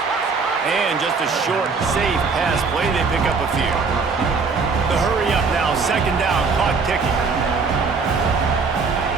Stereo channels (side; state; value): left; quieter; 4.7 dB